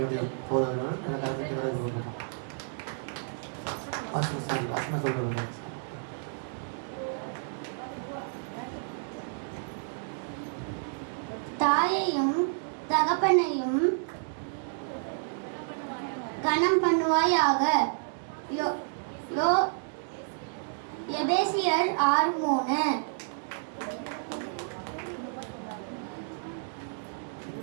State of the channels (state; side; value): silent; left; digital silence